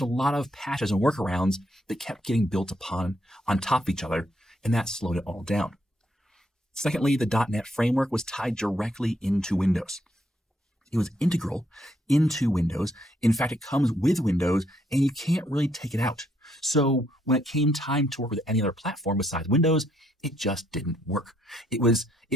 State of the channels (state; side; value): normal; both; correlation 0.73